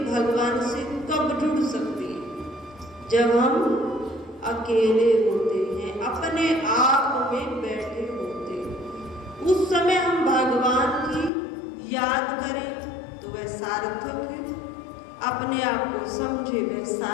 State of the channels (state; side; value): drops out; right; at 11.3 s